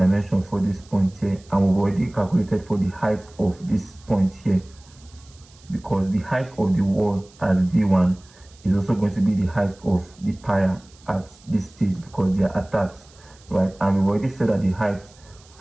for this point here, and we've already calculated for the height of this point here, because the height of the wall at V1 is also going to be the height of the pier at this stage, because they are attached, right? And we've already said that the height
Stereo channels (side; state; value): right; noise; hiss, 27 dB below the sound